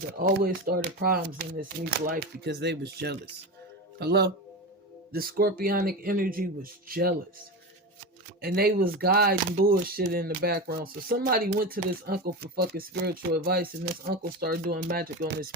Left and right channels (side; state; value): both; normal; correlation 0.23